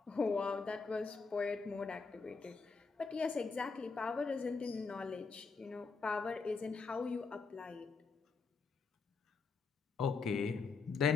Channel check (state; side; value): quieter; right; 4.7 dB